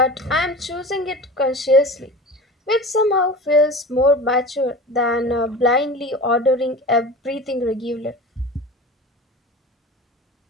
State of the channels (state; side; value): normal; both; correlation 0.34